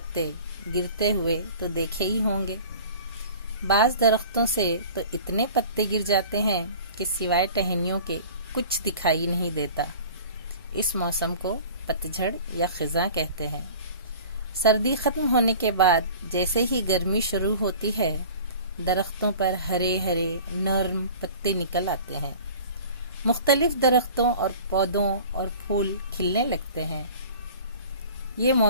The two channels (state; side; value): inverted; both; correlation -0.43